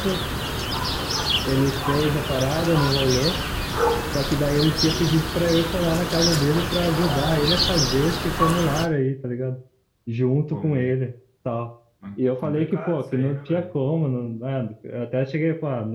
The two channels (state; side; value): identical; both; correlation 1.00